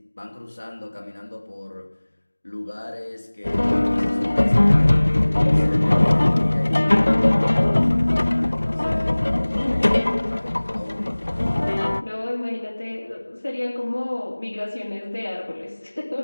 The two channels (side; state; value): both; inverted; correlation -1.00